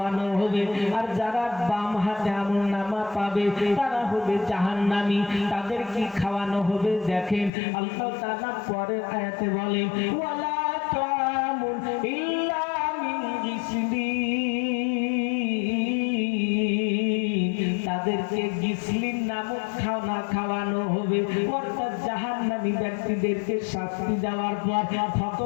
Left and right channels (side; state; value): right; drops out; at 7.5 s